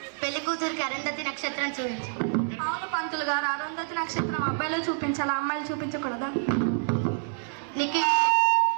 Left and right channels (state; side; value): silent; left; digital silence